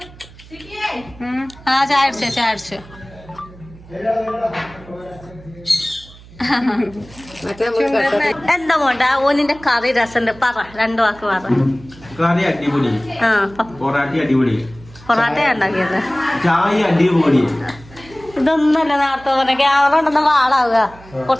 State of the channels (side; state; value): right; noise; hum, 21 dB below the sound